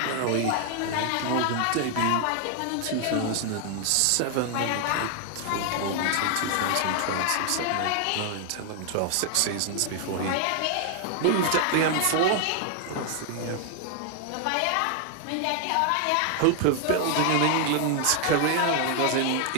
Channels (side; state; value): both; different; correlation 0.00